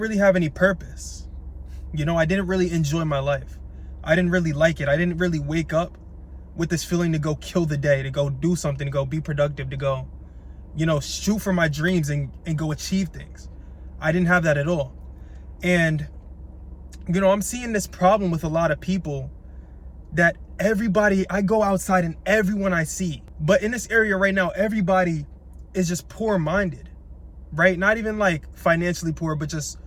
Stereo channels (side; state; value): both; identical; correlation 1.00